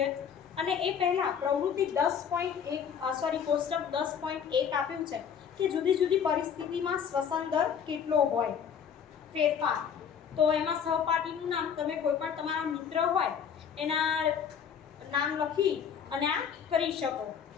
અને એ પહેલા પ્રવૃત્તિ 10.1 કોષ્ટક 10.1 આપ્યું છે કે જુદી જુદી પરિસ્થિતિમાં શ્વસન દર કેટલો હોય ફેરફાર. તો એમાં સહપાઠીનું નામ તમે કોઈ પણ તમારા મિત્ર હોય એના નામ લખી અને આ કરી શકો.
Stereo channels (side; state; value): right; quieter; 7.6 dB